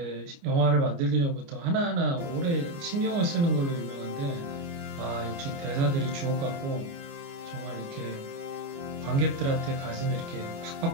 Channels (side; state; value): left; late; 29 ms